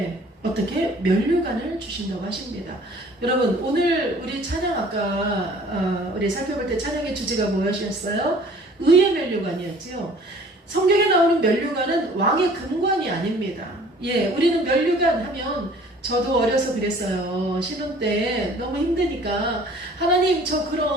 어떻게 면류관을 주신다고 하십니다. 여러분 오늘 우리 찬양 아까 우리 살펴볼 때 찬양의 주제가 무엇이었어요? 의의 면류관이었죠. 성경에 나오는 면류관은 왕의 금관이 아닙니다. 우리는 면류관 하면 저도 어려서 그랬어요. 신혼 때 너무 힘드니까 하나님 저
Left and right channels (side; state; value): both; normal; correlation 0.51